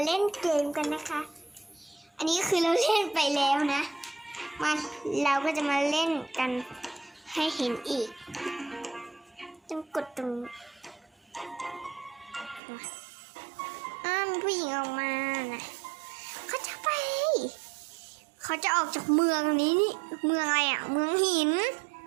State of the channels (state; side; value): drops out; left; at 12.6 s